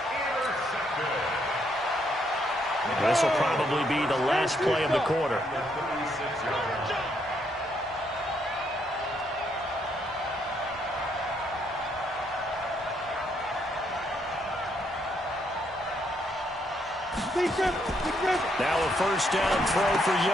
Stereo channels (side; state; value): both; normal; correlation 0.74